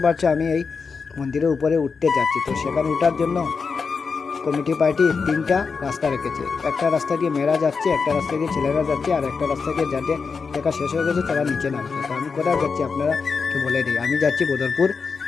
পাচ্ছ আমি এই মন্দিরের উপরে উঠতে যাচ্ছি। তো সেখানে ওঠার জন্য কমিটি পার্টি তিনটা রাস্তা রেখেছে। একটা রাস্তা দিয়ে মেয়েরা যাচ্ছে, একটা রাস্তা দিয়ে ছেলেরা যাচ্ছে, আর একটা রাস্তা দিয়ে যাদের দেখা শেষ হয়ে গেছে তারা নিচে নামছে। তো আমি কোথায় যাচ্ছি আপনারাকে বলে দিই, আমি যাচ্ছি বদরপুর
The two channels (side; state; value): right; quieter; 5.2 dB